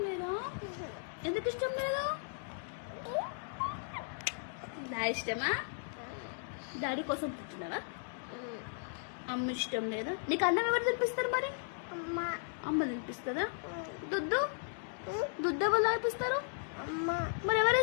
లేదా? ఎందుకు ఇష్టం లేదు? డాడీ ఇష్టమా? డాడీ కోసం పుట్టినారా? అమ్మ ఇష్టం లేదా? నీకు అన్నం ఎవరు తినిపిస్తారు మరి? అమ్మ తినిపిస్తుందా? దుద్దు దుద్దు ఎవరు తాగిపిస్తారు? మరి ఎవరు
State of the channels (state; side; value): silent; right; digital silence